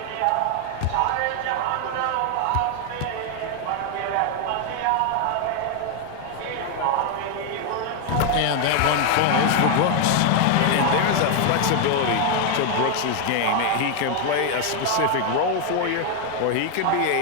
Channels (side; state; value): both; different; correlation 0.00